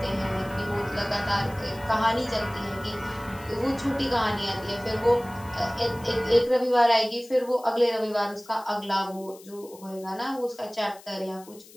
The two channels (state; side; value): noise; left; hiss, 22 dB below the sound